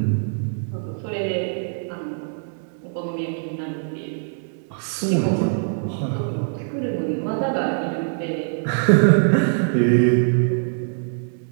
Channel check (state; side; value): silent; left; digital silence